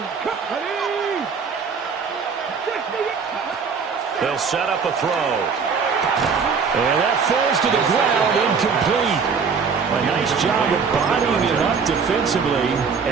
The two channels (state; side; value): quieter; left; 5.7 dB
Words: They'll set up a throw. And that falls to the ground, incomplete. A nice job of bodying it up defensively,